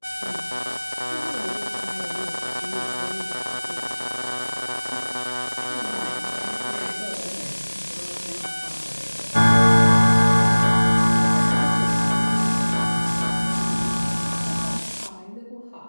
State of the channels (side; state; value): both; inverted; correlation -1.00